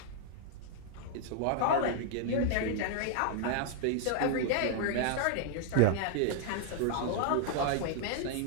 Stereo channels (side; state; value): both; different; correlation -0.01